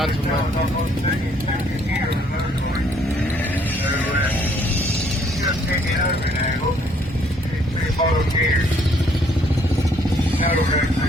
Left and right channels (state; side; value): normal; both; correlation 0.65